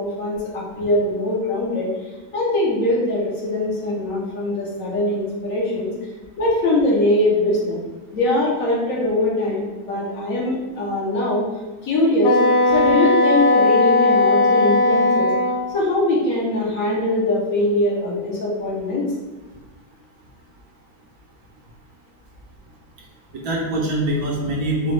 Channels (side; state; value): both; normal; correlation -0.17